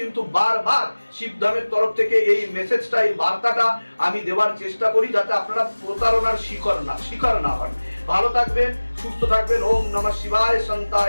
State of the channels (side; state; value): both; inverted; correlation -1.00